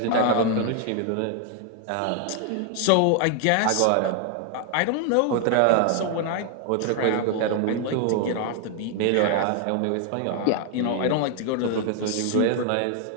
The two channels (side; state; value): both; different; correlation 0.00